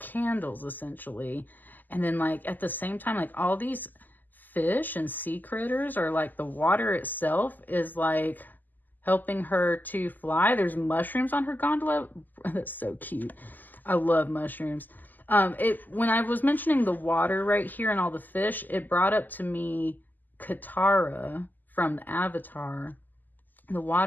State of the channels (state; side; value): late; right; 0.086 ms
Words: essentially. And then like at the same time, like all these fish and sea critters, or like the water itself is like helping her to fly. There's mushrooms on her gondola. That's so cute. I love mushrooms. When I was mentioning the water right here and all the fish, it brought up to me Katara from the Avatar. the